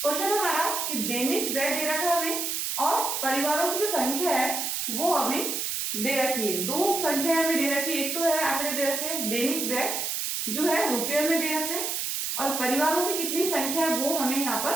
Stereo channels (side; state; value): right; noise; hiss, 1 dB below the sound